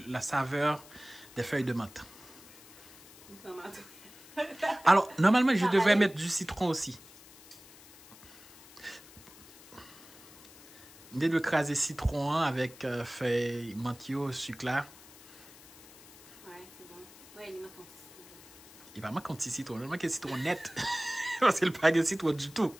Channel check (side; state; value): left; noise; hiss, 21 dB below the sound